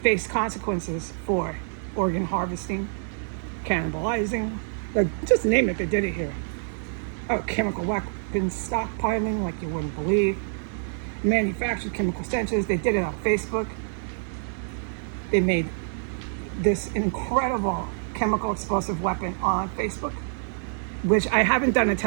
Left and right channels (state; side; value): silent; left; digital silence